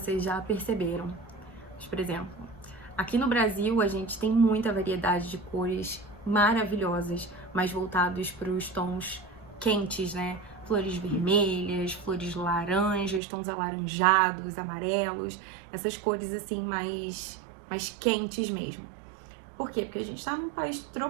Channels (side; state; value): left; drops out; at 13.2 s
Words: já perceberam. Mas, por exemplo, aqui no Brasil a gente tem muita variedade de cores maravilhosas, mais voltados para os tons quentes, né? Flores vermelhas, flores laranjas, tons alaranjados, amarelos, essas cores assim mais quentes mesmo. Por quê? Porque a gente está num país